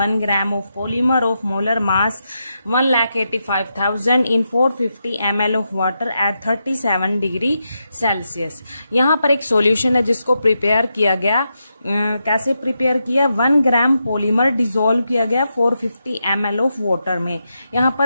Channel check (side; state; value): both; inverted; correlation -0.85